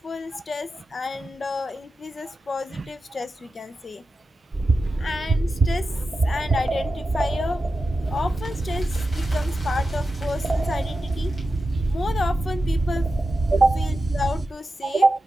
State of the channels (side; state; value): both; normal; correlation 0.91